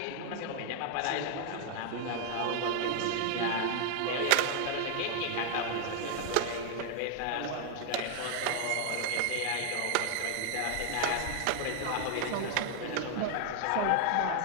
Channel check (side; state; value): both; different; correlation 0.00